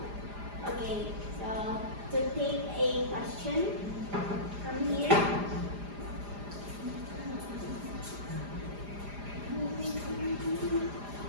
Okay, so to take a question from here.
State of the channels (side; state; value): left; late; 4.9 ms